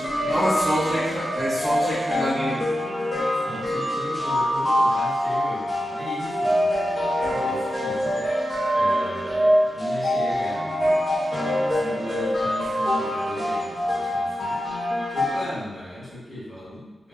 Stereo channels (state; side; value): normal; both; correlation 0.90